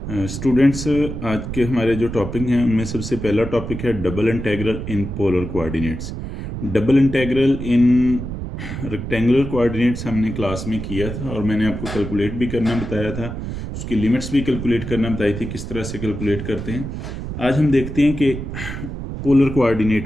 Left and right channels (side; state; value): right; noise; rumble, 7 dB below the sound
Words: Students आज के हमारे जो टॉपिक हैं उनमें सबसे पहला टॉपिक है double integral in polar coordinates. Double integral in rectangular coordinates हमने क्लास में किया था और मैंने आपको कैलकुलेट भी करना बताया था, उसकी लिमिट्स भी कैलकुलेट करना बताई थी किस तरह से कैलकुलेट करते हैं। आज हम देखते हैं कि पोलर